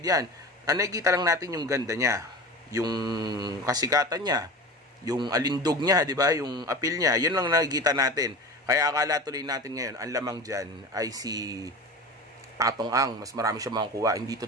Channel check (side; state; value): both; normal; correlation 0.33